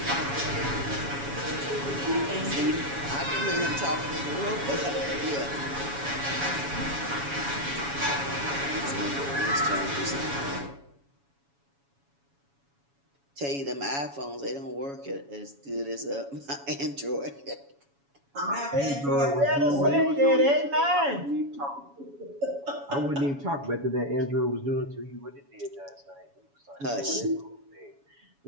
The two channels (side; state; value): left; late; 7.1 ms